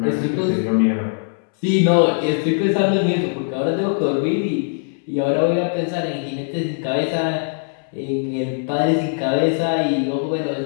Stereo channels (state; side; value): silent; right; 64 dB below the other